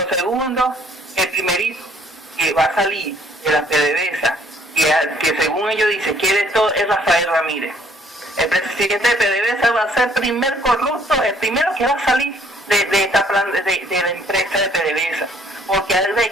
segundo, el primerito que va a salir de la PDVSA, que según ellos dicen quiere todo, es Rafael Ramírez. El presidente de PDVSA va a ser el primer corrupto, el primero que va a salir de la empresa de PDVSA, porque ha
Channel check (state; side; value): normal; both; correlation 0.62